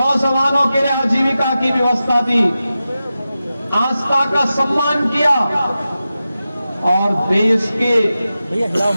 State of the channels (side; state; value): both; inverted; correlation -0.93